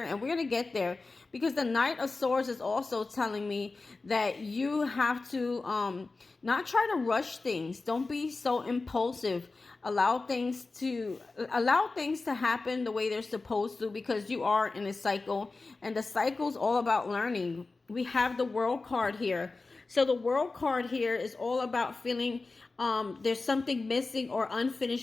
And we're going to get there because the Knight of Swords is also telling me that you have to not try to rush things. Don't be so impulsive. Allow things to happen the way they're supposed to, because you are in a cycle, and the cycle is all about learning. We have the World card here. So the World card here is all about feeling there's something missing or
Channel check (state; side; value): quieter; right; 3.7 dB